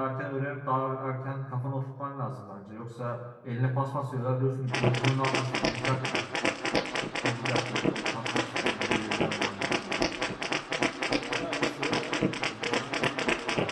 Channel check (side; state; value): both; identical; correlation 1.00